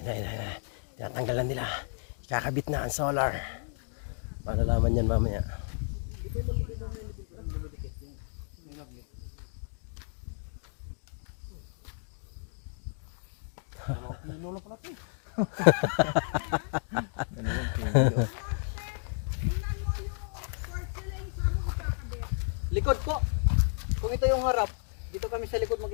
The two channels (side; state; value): right; silent; 57 dB below the other